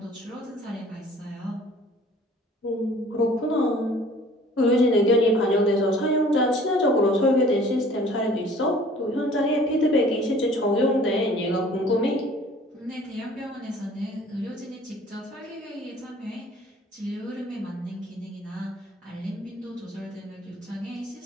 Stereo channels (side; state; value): both; normal; correlation 0.51